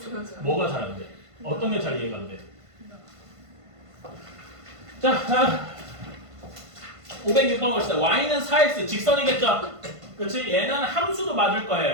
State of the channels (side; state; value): left; late; 1.5 ms